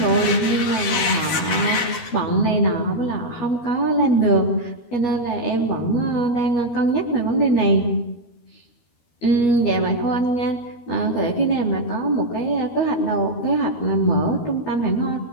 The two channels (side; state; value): right; late; 12 ms